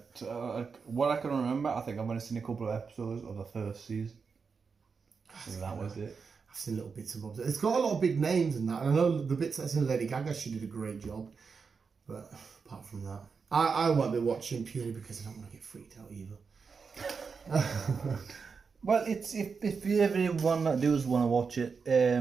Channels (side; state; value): left; quieter; 5.4 dB